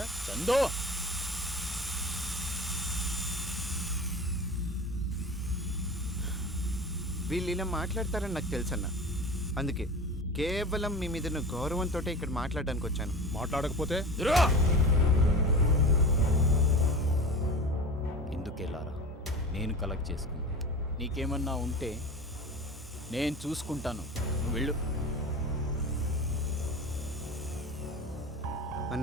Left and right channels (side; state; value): both; normal; correlation 0.33